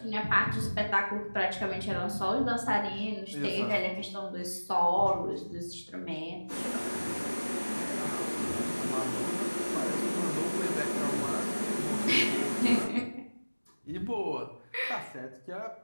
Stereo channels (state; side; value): inverted; both; correlation -1.00